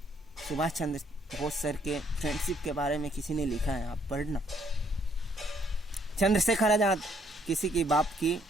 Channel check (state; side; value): normal; both; correlation 0.67